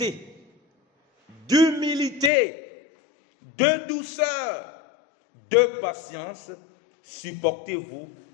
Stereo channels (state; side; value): drops out; right; at 2.3 s